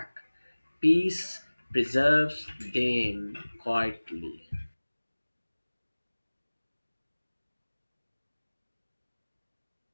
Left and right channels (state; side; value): inverted; both; correlation -1.00